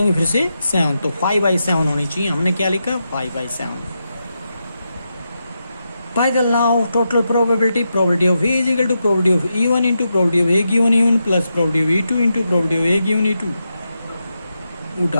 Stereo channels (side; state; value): both; inverted; correlation -0.87